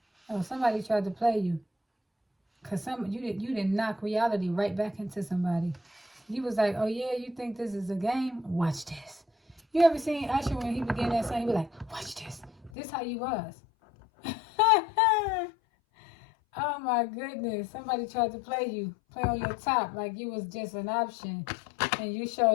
Oh, somebody tried to play you. Cause you didn't knock reality right back into somebody. You was like, oh yeah, you think this is a game? Watch this. You ever seen Usher when he began that song? He be like, watch this. This how you was. Oh my goodness. Somebody tried to play you. Play on your top like you was just an option. And you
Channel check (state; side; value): drops out; right; at 12.7 s